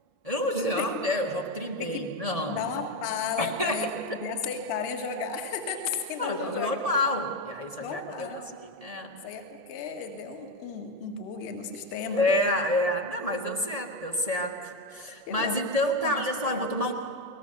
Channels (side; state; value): left; late; 1.7 ms